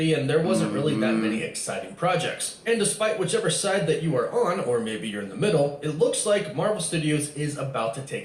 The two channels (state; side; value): identical; both; correlation 1.00